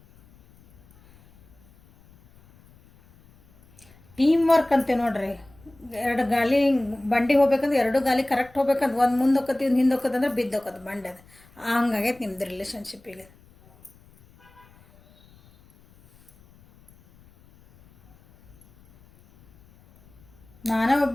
ಟೀಮ್ ವರ್ಕ್ ಅಂತೆ ನೋಡ್ರಿ. ಎರಡು ಗಾಲಿ ಬಂಡಿ ಹೋಗ್ಬೇಕಂದ್ರೆ ಎರಡು ಗಾಲಿ ಕರೆಕ್ಟ್ ಹೋಗ್ಬೇಕಂದ್ರೆ ಒಂದು ಮುಂದೆ ಹೋಗತಿ, ಒಂದು ಹಿಂದೆ ಹೋಗೋದಂದ್ರೆ ಬಿದ್ದು ಹೋಗೋದು ಬಂಡಿ. ಅದು ಹಂಗಾಗೈತೆ ನಿಮ್ದು ರಿಲೇಷನ್ಶಿಪ್ಪಿಗೆ. ನಾನೇ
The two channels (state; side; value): noise; left; rumble, 28 dB below the sound